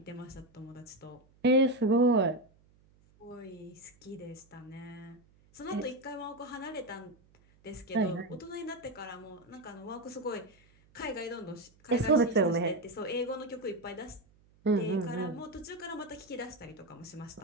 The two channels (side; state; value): right; noise; hum, 30 dB below the sound